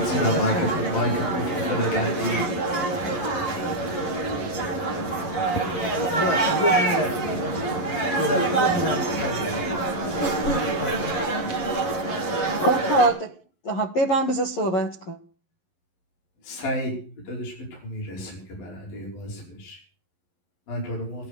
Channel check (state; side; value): late; right; 11 ms